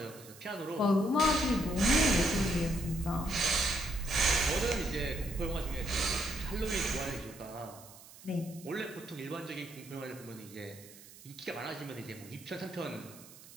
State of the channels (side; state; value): right; noise; hiss, 19 dB below the sound